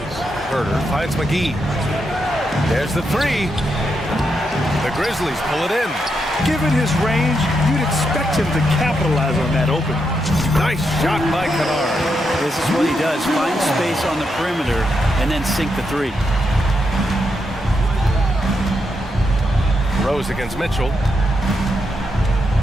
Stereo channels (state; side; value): normal; both; correlation 0.82